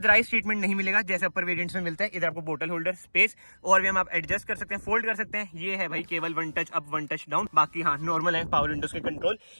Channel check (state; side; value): inverted; both; correlation -1.00